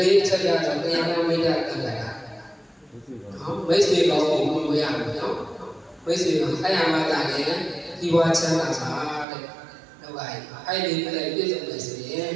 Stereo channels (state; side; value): drops out; left; at 9.2 s